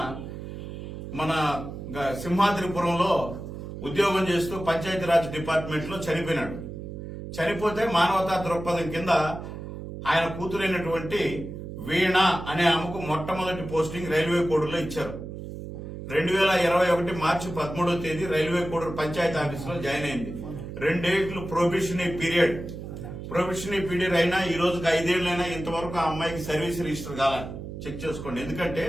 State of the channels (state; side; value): noise; right; hum, 9 dB below the sound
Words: మన సింహాద్రిపురంలో ఉద్యోగం చేస్తూ పంచాయతీరాజ్ డిపార్ట్మెంట్ లో చనిపోయినాడు. చనిపోతే మానవతా దృక్పథం కింద ఆయన కూతురైనటువంటి వీణ అనే ఆమెకు మొట్టమొదటి పోస్టింగ్ రైల్వే కోడూరులో ఇచ్చారు. 2021 మార్చి 13వ తేదీ రైల్వే కోడూరు పంచాయతీ ఆఫీసులో జాయిన్ అయింది. 2 ఏళ్లు ప్రొబేషనరీ పీరియడ్ అయినా ఈ రోజుకి 5 ఏళ్లైనా ఇంతవరకు ఆ అమ్మాయికి సర్వీస్ రిజిస్టర్ కాల చెక్ చేసుకోండి. ఎందుకంటే